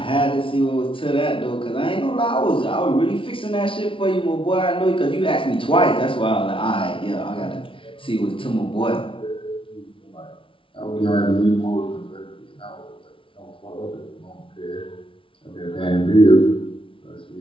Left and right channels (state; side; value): late; right; 0.25 ms